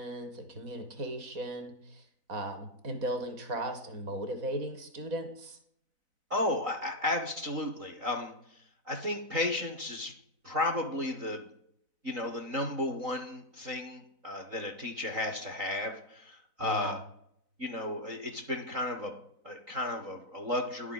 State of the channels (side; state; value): left; late; 4.0 ms